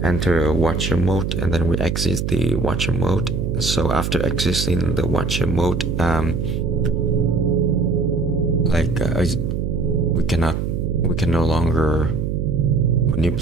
enter a watcher mode and then we exit the watcher mode. So after exiting the watcher mode, we can no longer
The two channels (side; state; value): right; noise; hum, 1 dB below the sound